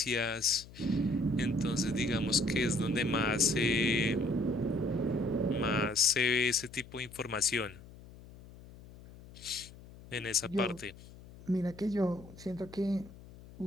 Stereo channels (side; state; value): left; noise; hum, 19 dB below the sound